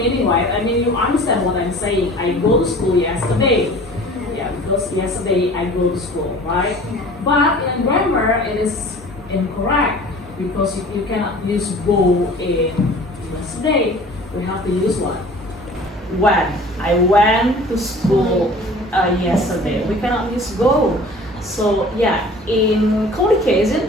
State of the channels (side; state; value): both; normal; correlation 0.45